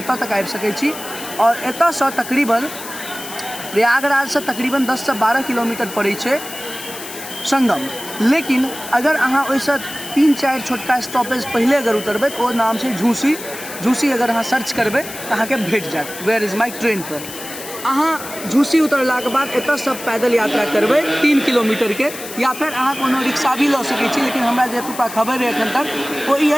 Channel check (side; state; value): left; noise; hiss, 12 dB below the sound